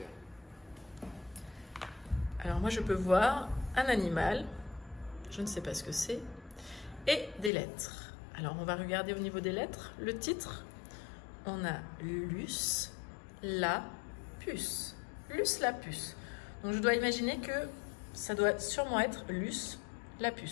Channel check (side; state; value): right; drops out; at 7.5 s